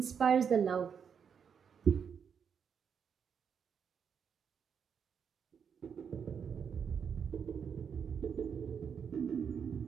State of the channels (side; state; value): left; quieter; 7.1 dB